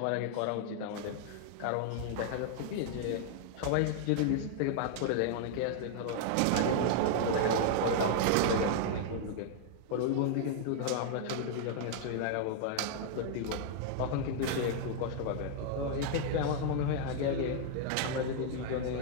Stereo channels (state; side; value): different; both; correlation -0.01